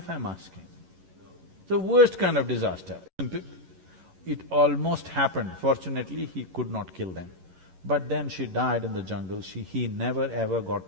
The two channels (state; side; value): late; left; 11 ms